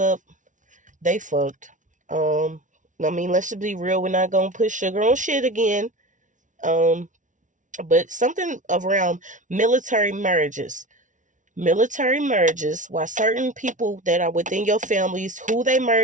they fucked. I mean, let's just be real. We're not going to put sugar on shit again. But something around military marriages. Military marriages, why certain people that are within your families, who they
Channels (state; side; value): late; left; 0.37 ms